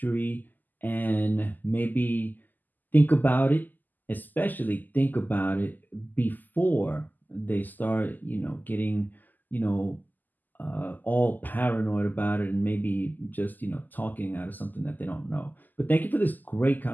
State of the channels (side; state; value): right; late; 0.085 ms